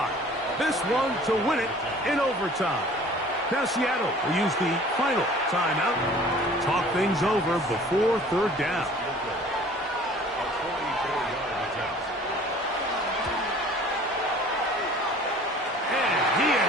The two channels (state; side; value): normal; both; correlation 0.49